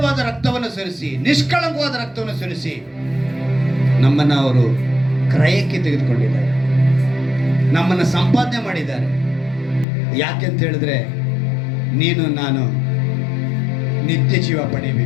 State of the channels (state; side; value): drops out; right; at 9.9 s